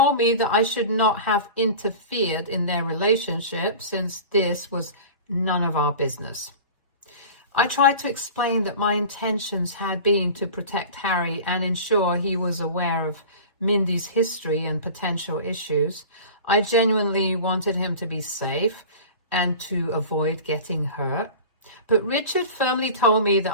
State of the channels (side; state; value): both; inverted; correlation -0.36